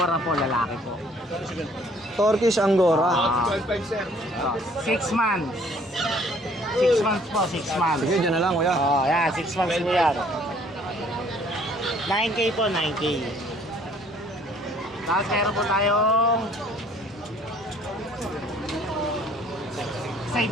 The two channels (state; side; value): normal; both; correlation 0.58